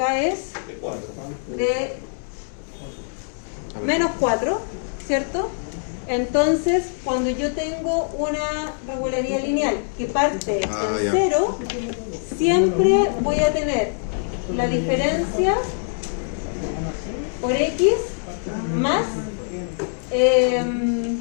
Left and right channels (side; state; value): right; silent; digital silence